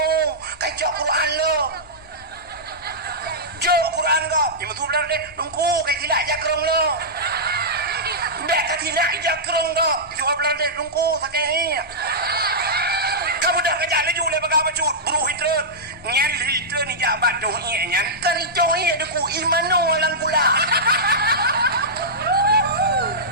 kacau Quran lo jo Quran ko yang betul belara del dongko kayak tidak jakrong lo bek tidak jakrong do jual belara del dongko sakit kamu dah kerja lagi oleh bagaimana cut buru hitren nyan hitren ni jabat doh nyan kan itu ada ku imano lang kula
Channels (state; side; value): normal; both; correlation -0.12